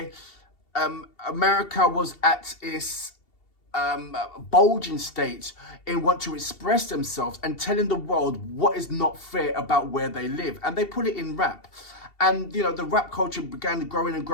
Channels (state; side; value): late; right; 2.7 ms